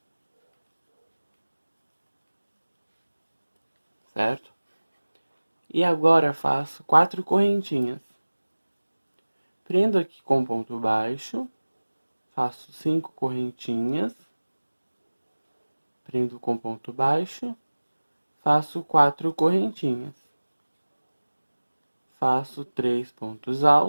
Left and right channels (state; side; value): inverted; both; correlation -1.00